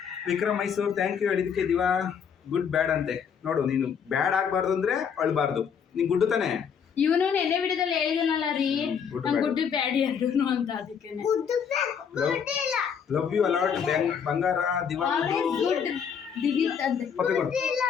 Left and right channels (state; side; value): quieter; right; 7.2 dB